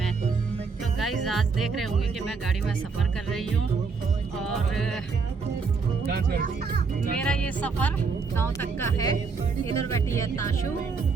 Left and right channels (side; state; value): left; quieter; 4.9 dB